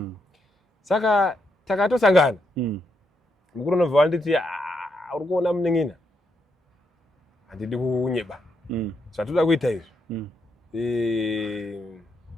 saka takatosangana mukuru unobva wanditi uri kuona muneng'ina handidi kunyeba zvatoda kuita izvi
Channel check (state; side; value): normal; both; correlation 0.79